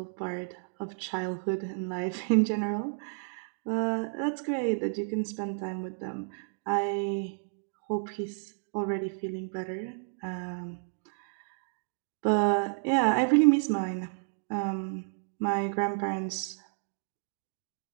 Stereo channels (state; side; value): silent; left; digital silence